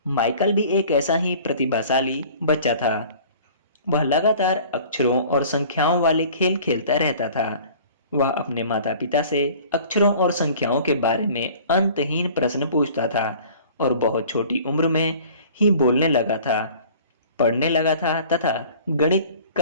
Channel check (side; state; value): both; inverted; correlation -0.47